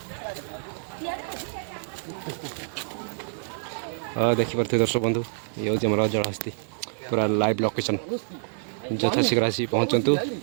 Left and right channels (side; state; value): left; silent; digital silence